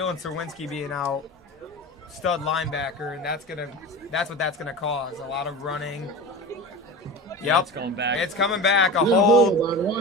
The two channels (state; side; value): normal; both; correlation 0.30